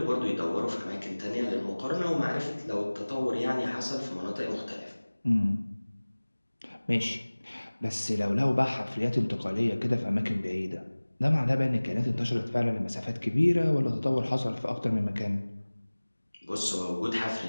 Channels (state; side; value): inverted; both; correlation -1.00